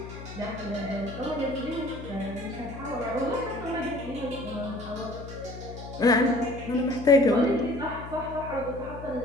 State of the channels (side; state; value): left; noise; hum, 12 dB below the sound